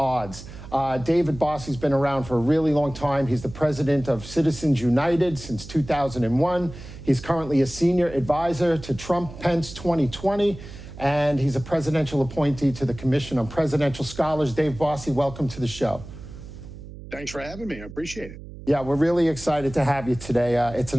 David Bossie's been around for a really long time. He's the president of Citizens United since 2001. He's currently a senior advisor to Trump-Pence 2020. And he's a presidential appointee to the Commission on Presidential Scholars. Dave Bossie, welcome to the show. Thanks for having me. I appreciate it. Yeah, we're really excited to have you today. It's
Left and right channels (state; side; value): noise; right; hum, 14 dB below the sound